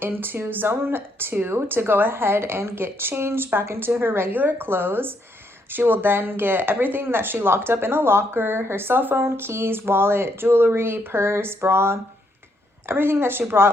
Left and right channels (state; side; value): normal; both; correlation 0.74